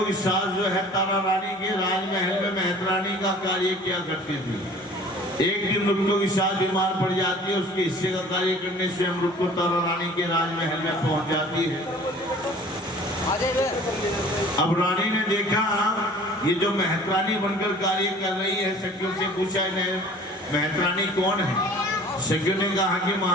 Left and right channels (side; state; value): both; normal; correlation 0.47